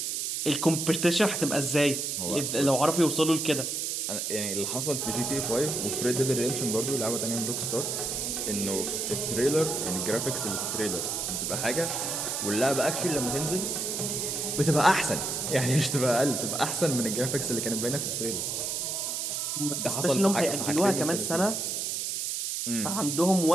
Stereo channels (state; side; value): noise; right; hiss, 2 dB below the sound